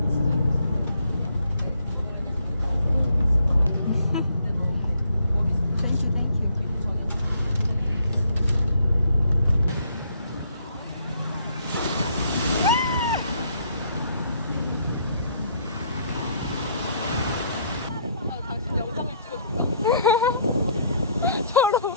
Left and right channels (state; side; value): inverted; both; correlation -0.66